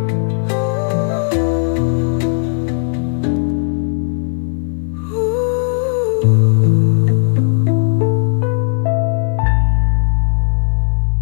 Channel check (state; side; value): silent; right; 61 dB below the other